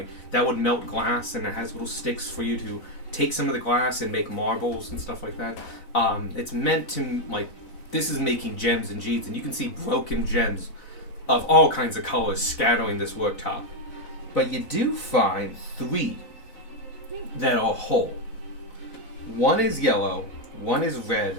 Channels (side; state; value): right; late; 4.0 ms